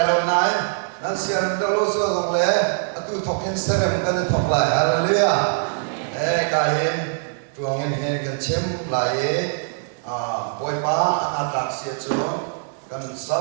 lo naik nanti arem deh lo sudah boleh atu token serem kan tok lay haleluya kain tuangin ini kan tim lay boy pa atraksi aja kan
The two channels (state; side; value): silent; left; digital silence